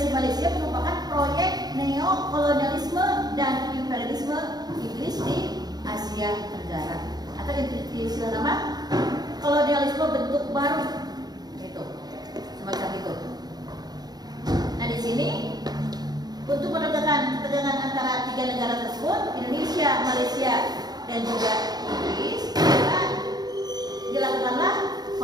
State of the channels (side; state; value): left; late; 0.19 ms